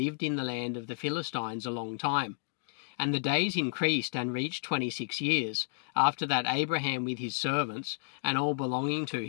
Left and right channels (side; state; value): right; silent; digital silence